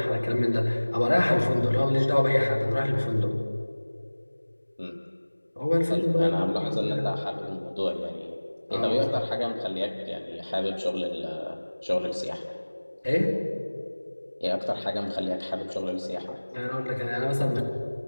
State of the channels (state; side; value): inverted; both; correlation -1.00